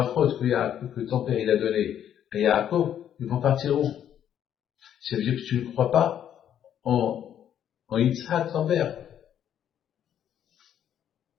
que ton père il a donné à Yaakov, ils vont partir où? Ça veut dire que tu ne crois pas en Yitzhak, ton père.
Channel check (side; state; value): right; quieter; 10.0 dB